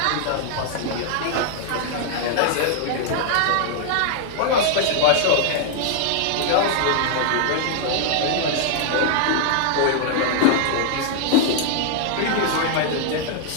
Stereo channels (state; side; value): different; both; correlation 0.00